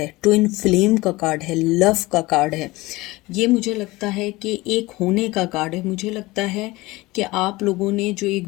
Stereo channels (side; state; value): right; quieter; 20.7 dB